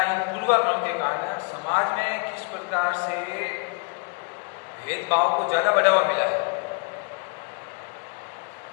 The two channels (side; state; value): right; quieter; 36.0 dB